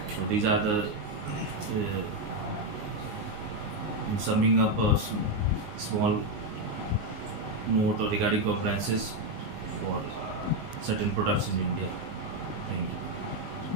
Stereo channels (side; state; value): left; late; 19 ms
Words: So these are the in summing up a small note regarding compliances for certain products in India. Thank you.